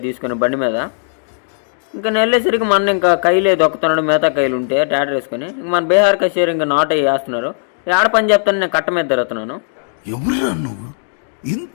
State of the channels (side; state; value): right; silent; digital silence